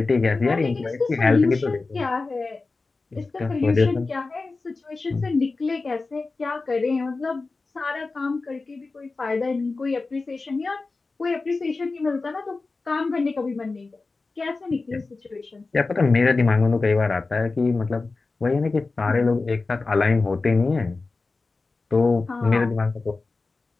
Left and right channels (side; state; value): right; quieter; 3.8 dB